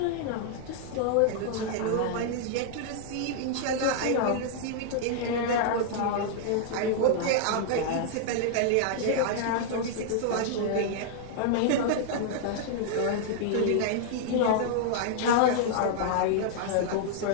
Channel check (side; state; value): both; different; correlation -0.01